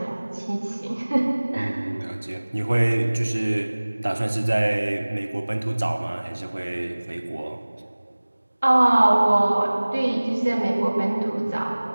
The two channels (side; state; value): both; inverted; correlation -1.00